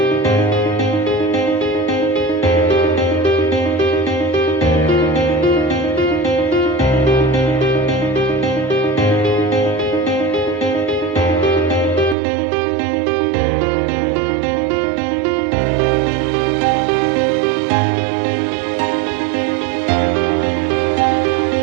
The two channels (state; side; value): drops out; left; at 12.2 s